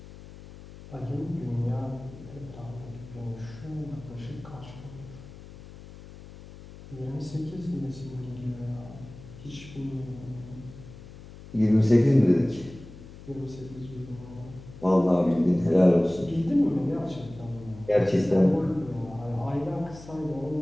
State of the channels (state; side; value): noise; left; hum, 17 dB below the sound